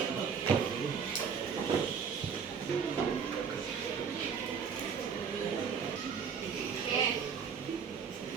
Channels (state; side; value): quieter; left; 6.5 dB